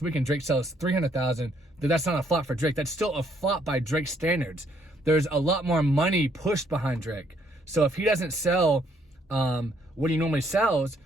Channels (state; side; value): normal; both; correlation 0.69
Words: and Drake sells 300,000, that's not a flop for Drake. That's still a flop by Drake's standards. There's a lot more money pushed behind Drake. So if he doesn't sell what he normally sells,